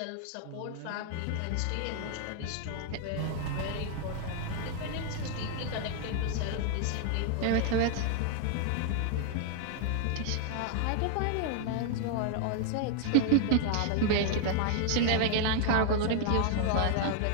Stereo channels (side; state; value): both; different; correlation 0.00